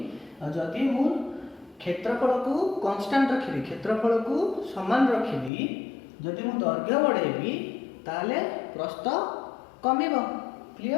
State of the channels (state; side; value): drops out; right; at 5.5 s